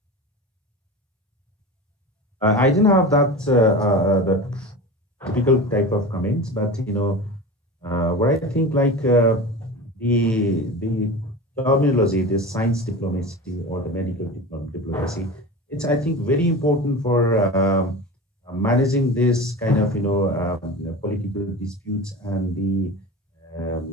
I didn't have the typical type of comments, but what I think, the terminology, the science diplomacy or the medical diplomacy, it's, I think, very important for managing this kind of political disputes, and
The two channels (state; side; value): normal; both; correlation 0.30